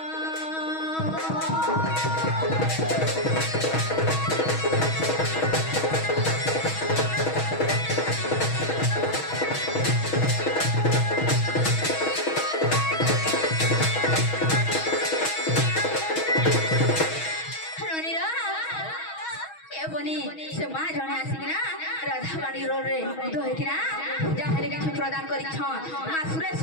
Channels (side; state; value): right; late; 6.3 ms